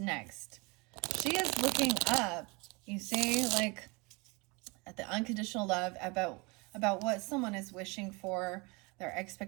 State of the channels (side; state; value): left; quieter; 27.7 dB